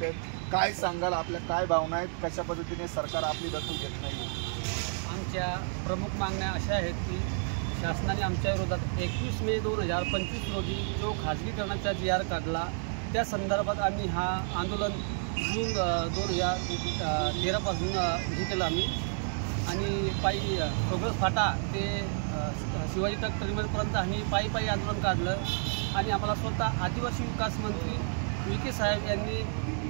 काय सांगाल, आपल्या काय भावना आहेत, कशा पद्धतीने सरकार आपली दखल घेत नाही? आमच्या प्रमुख मागण्या अशा आहेत की शासनाने आमच्या विरोधात 21 मे 2025 रोजी जो खाजगीकरणाचा GR काढला त्या संदर्भात आम्ही हा आंदोलन जून 2013 पासून हे केलं आम्ही आणि पायी प्रोग्रेस फाटा ते शिवाजी तक टर्मिनलपर्यंत आम्ही पायी आंदोलन काढलं आणि आम्हाला स्वतः आदिवासी विकास मंत्री विखे साहेब यांनी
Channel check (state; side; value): silent; left; 57 dB below the other